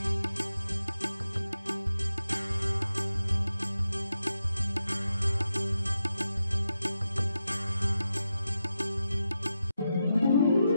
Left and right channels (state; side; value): inverted; both; correlation -0.88